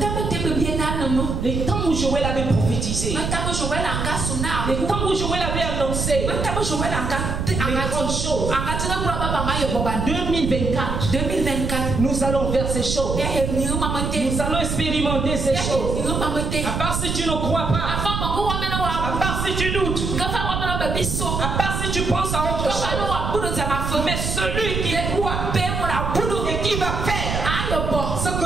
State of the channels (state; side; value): noise; right; rumble, 2 dB below the sound